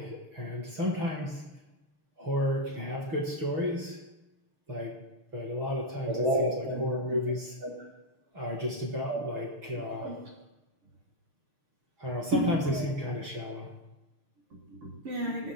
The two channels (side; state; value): left; late; 6.6 ms